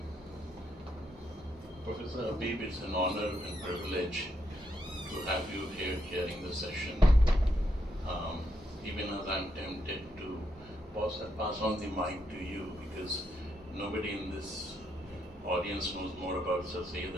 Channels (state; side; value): normal; both; correlation 0.79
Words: Professor Habib, it's an honor and privilege to have you here chairing the session. Even as I'm tempted to pass on the mic to you, because nobody in this audience knows more about Sir Syed